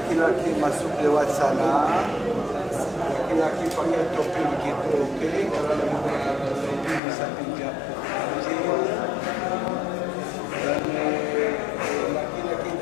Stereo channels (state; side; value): drops out; right; at 7.0 s